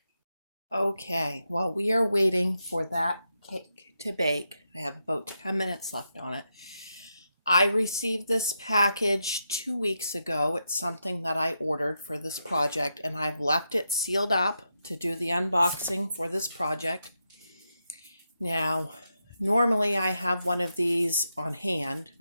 Okay, while we are waiting for that cake to bake, I have about 10 minutes left on it. I received this package 2 weeks ago. It's something that I ordered for this project, and I've left it sealed up to do the unboxing for this project. Now, normally I have one of these on hand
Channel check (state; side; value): inverted; both; correlation -0.85